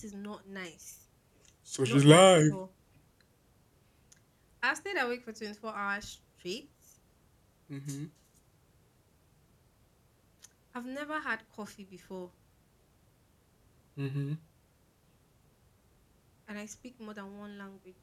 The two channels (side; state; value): both; identical; correlation 1.00